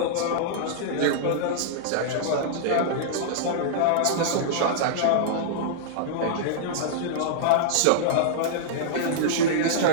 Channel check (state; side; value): different; both; correlation -0.02